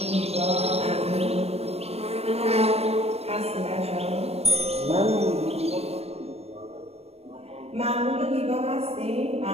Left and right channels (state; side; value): late; left; 0.30 ms